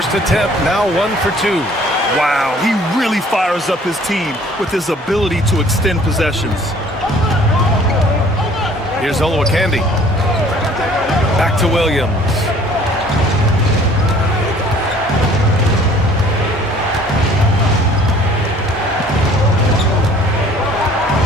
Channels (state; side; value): normal; both; correlation 0.54